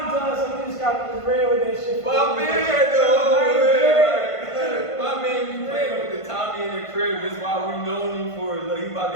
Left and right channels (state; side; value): late; right; 1.5 ms